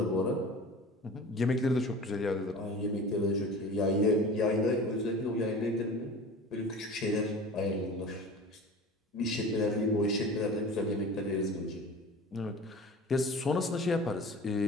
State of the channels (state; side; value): normal; both; correlation 0.38